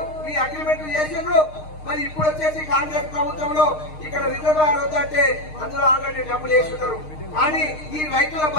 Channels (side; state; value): right; late; 6.5 ms